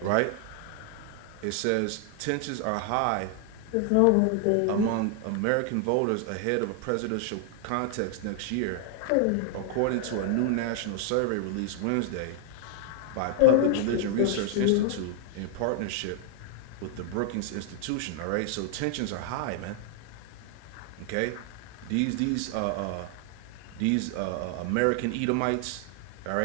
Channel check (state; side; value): different; both; correlation 0.00